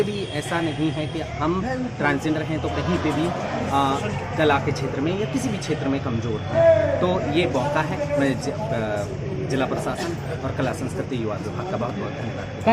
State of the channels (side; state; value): both; identical; correlation 1.00